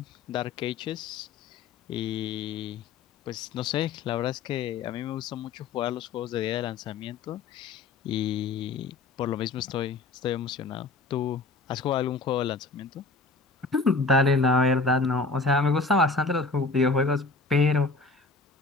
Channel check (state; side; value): quieter; right; 3.8 dB